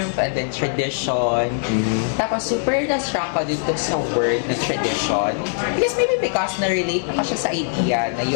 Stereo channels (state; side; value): silent; right; 65 dB below the other